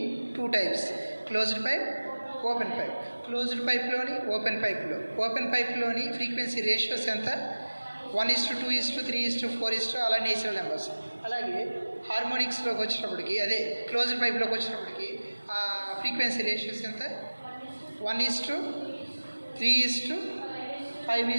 2 types. Closed pipe, open pipe. Closed పైప్లోని ఓపెన్ పైప్లోని ఫ్రీక్వెన్సీ రేషియోస్ ఎంత? 1:2:3:4 అలా నేచురల్ నెంబర్స్. అలాగే హార్మోనిక్స్లోకి వచ్చినప్పటికి, అదే క్లోజ్డ్ పైప్లోకి వచ్చినప్పటికి ఆ ఫ్రీక్వెన్సీ రేషియోస్ ఎంత?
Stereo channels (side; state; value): both; inverted; correlation -1.00